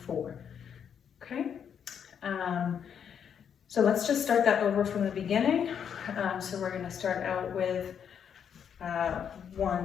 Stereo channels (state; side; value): quieter; right; 7.9 dB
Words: 4. Okay. So let's just start that over from the beginning. So we're going to start out with 1